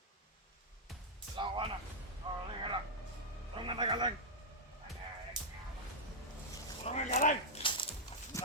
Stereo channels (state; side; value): normal; both; correlation -0.06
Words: Lawa na. Lingara. Tulong na tagalang. Tulong na galang.